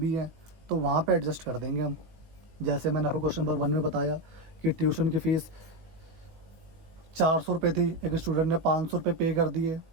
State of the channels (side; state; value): left; late; 18 ms